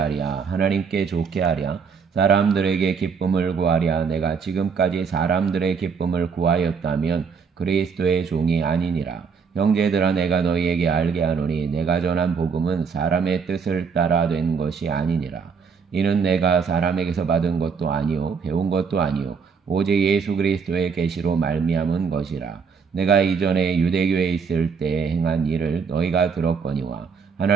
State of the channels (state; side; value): quieter; left; 5.8 dB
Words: 하나님께 좋게 하랴 사람들에게 기쁨을 구하랴 내가 지금까지 사람들의 기쁨을 구하였다면 그리스도의 종이 아니니라. 형제들아 내가 너희에게 알게 하노니 내가 전한 복음은 사람의 뜻을 따라 된 것이 아니니라. 이는 내가 사람에게서 받은 것도 아니요 배운 것도 아니요 오직 예수 그리스도의 계시로 말미암은 것이라. 내가 이전에 유대교에 있을 때 행한 일을 너희가 들었거니와